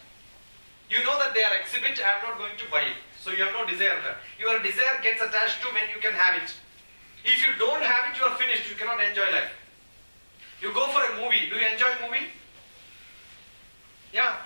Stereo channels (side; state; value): both; inverted; correlation -1.00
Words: You know that they are exhibit. I am not going to buy it. So you have no desire there. Your desire gets attached to when you can have it. If you don't have it, you are finished. You cannot enjoy life. You go for a movie. Do you enjoy movie?